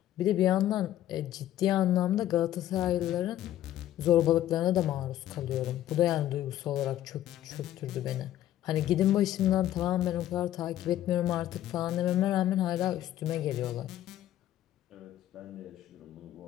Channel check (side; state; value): right; quieter; 12.8 dB